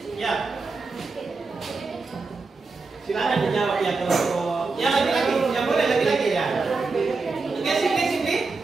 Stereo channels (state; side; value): quieter; left; 4.1 dB